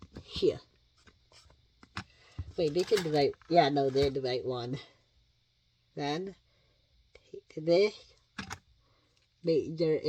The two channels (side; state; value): both; identical; correlation 1.00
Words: here. Wait, this is the right, yeah, no, they're the right one. Then, take this, make sure